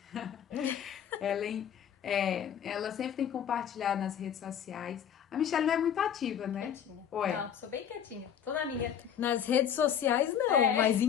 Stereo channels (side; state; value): right; quieter; 8.9 dB